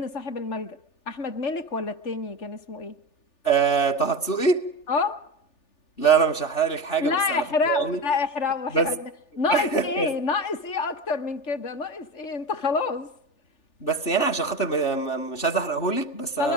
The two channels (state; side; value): late; right; 3.4 ms